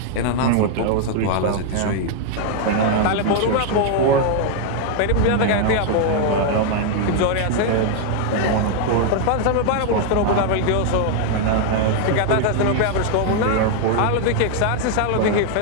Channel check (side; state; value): both; different; correlation 0.00